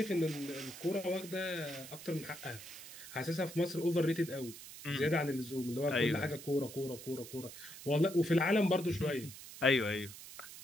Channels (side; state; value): right; noise; hiss, 14 dB below the sound